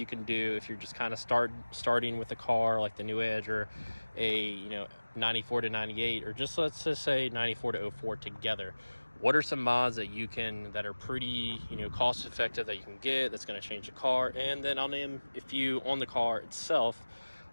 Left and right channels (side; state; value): both; inverted; correlation -1.00